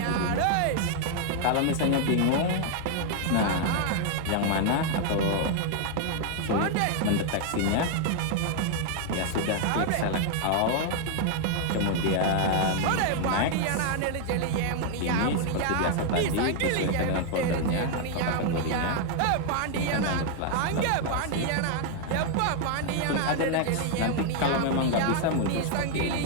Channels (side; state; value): both; different; correlation 0.00